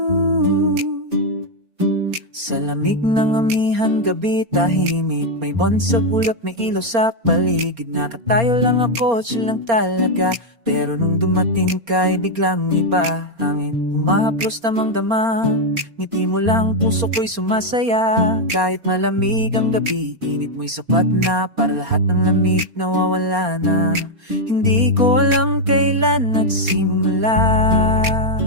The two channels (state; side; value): late; left; 4.3 ms